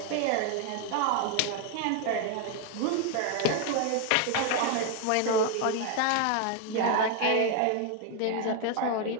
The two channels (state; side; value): different; both; correlation 0.01